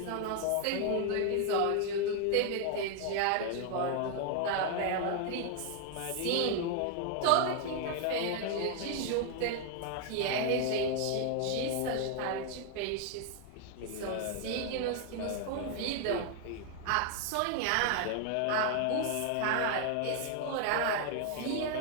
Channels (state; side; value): different; both; correlation 0.00